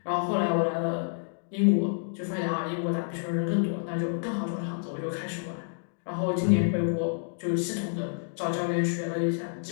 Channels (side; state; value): right; silent; digital silence